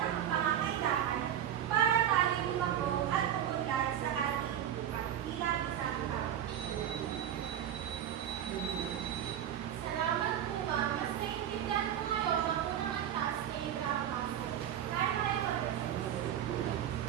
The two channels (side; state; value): left; quieter; 10.3 dB